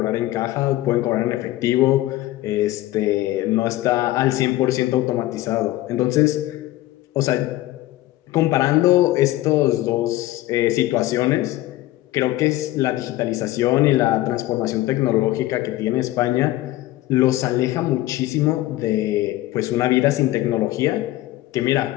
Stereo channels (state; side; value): quieter; right; 16.4 dB